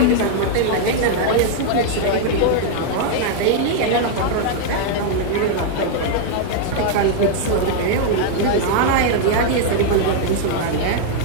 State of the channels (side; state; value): both; different; correlation 0.00